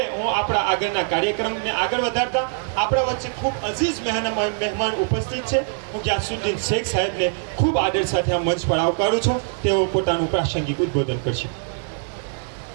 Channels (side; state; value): left; silent; 64 dB below the other